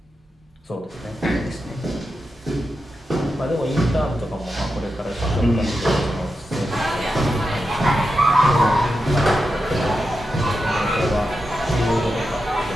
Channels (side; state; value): both; normal; correlation 0.89